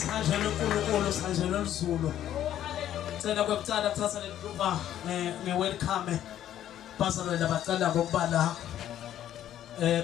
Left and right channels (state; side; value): quieter; right; 11.5 dB